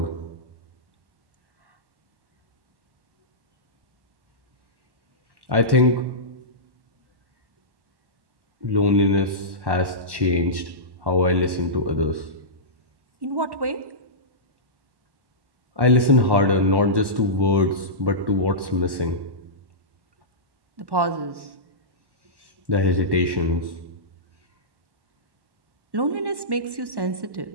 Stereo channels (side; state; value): left; late; 1.1 ms